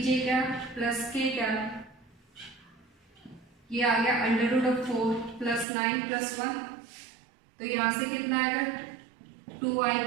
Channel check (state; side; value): drops out; left; at 5.7 s